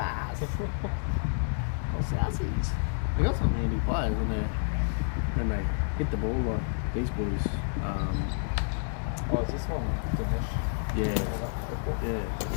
All Southsies. They got some handy players when they hit the ball like these boys. Oh, is this one Dinesh? Yeah.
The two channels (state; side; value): silent; right; 58 dB below the other